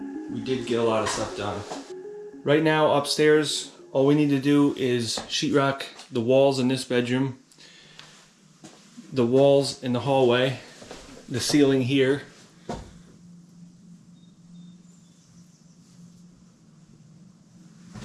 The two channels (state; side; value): identical; both; correlation 1.00